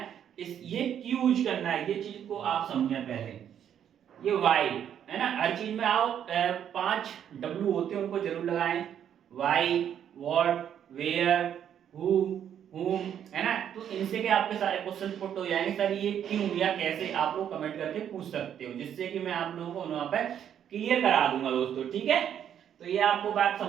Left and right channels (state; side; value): quieter; left; 9.4 dB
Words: ये क्यों यूज करना है, ये चीज को आप समझे पहले। ये वाई है ना, हर चीज में आओ 5 डब्ल्यू होते हैं, उनको जरूर लगाएं, why, what, where, who, whom, है ना। तो इनसे के आपके सारे क्वेश्चन पुट हो जाएंगे, सर ये क्यों या कैसे, आप लोग कमेंट करके पूछ सकते हो, जिससे कि मैं आप लोगों को वहां पे क्लियर करा दूंगा दोस्तों, ठीक है। तो ये आपको बात